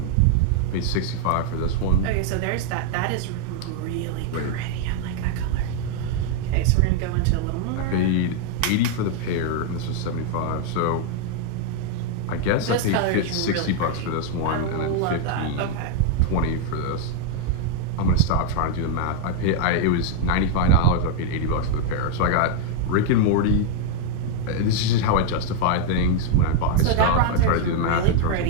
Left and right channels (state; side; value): different; both; correlation 0.00